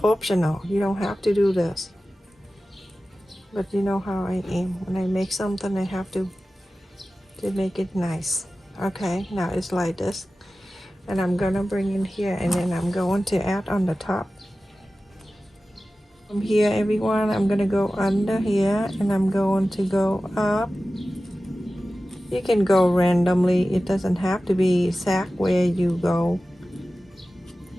optional. You don't have to do this. But you know how I am. When I make something, I have to make it nice. Okay, now it's like this. And I'm gonna bring in here, and then I'm going to add on the top. From here, everyone, I'm gonna go under here, and I'm going to go up. You can go randomly. It doesn't have to be exact where you go.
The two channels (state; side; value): normal; both; correlation 0.95